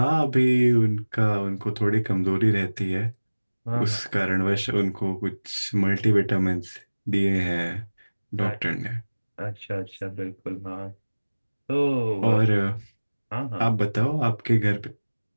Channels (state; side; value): inverted; both; correlation -1.00